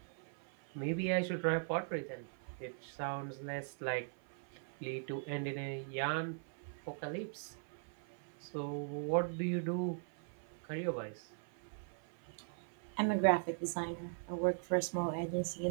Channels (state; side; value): silent; left; 51 dB below the other